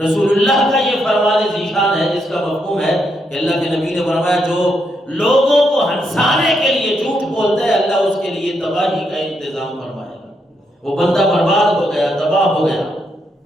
اللہ کا یہ فرمان ذیشان ہے، جس کا مفہوم ہے کہ اللہ کے نبی نے فرمایا جو لوگوں کو ہنسانے کے لیے جھوٹ بولتا ہے، اللہ اس کے لیے تباہی کا انتظام فرمائے گا، وہ بندہ برباد ہو گیا، تباہ ہو گیا۔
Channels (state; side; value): normal; both; correlation 0.79